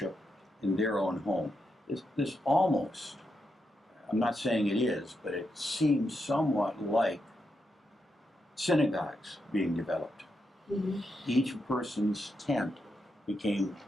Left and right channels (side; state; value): both; normal; correlation 0.84